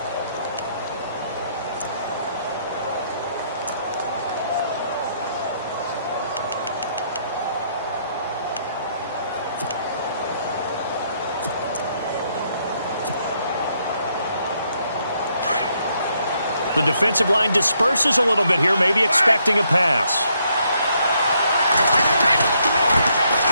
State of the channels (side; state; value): both; inverted; correlation -0.73